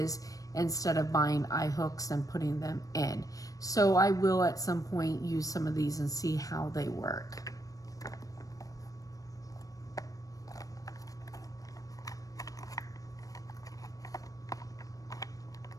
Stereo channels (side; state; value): right; late; 0.17 ms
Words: instead of buying eye hooks and putting them in. So I will at some point use some of these and see how they work.